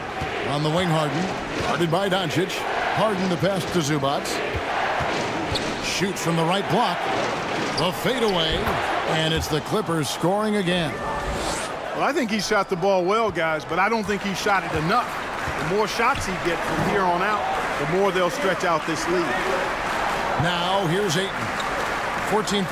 On the wing, Harden. Guarded by Doncic. Harden to pass to Zubac. Shoots from the right block. The fadeaway. And it's the Clippers scoring again. Well, I think he shot the ball well, guys, but I don't think he shot it enough. The more shots he gets from here on out, the more they'll stretch out this lead. Now here's Ayton. 14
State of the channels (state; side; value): identical; both; correlation 1.00